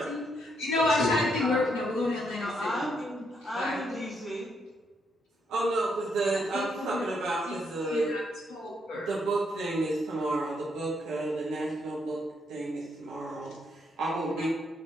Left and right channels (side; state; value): both; normal; correlation 0.76